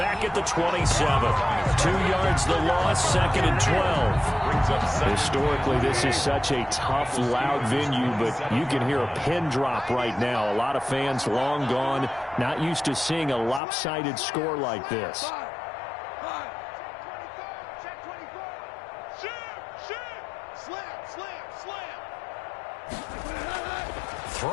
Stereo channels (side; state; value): right; drops out; at 13.6 s